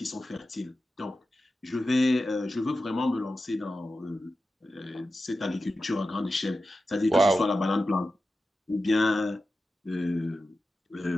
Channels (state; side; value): normal; both; correlation 0.93